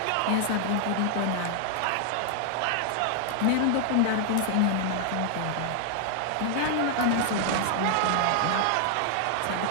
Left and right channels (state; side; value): different; both; correlation 0.00